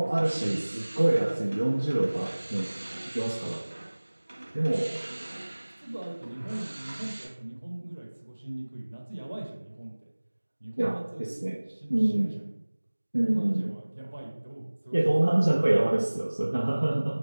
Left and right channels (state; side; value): inverted; both; correlation -1.00